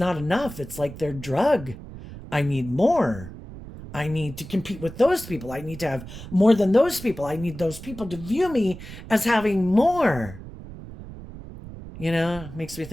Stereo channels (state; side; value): noise; right; rumble, 13 dB below the sound